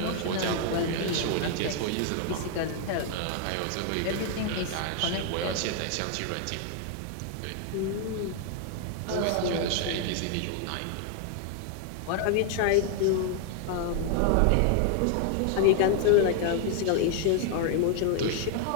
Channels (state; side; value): different; both; correlation 0.00